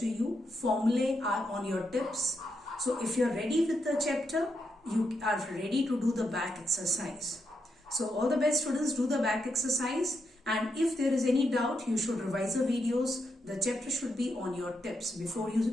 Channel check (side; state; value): both; normal; correlation 0.82